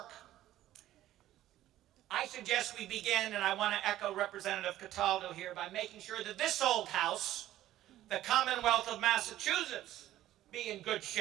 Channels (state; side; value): quieter; left; 13.8 dB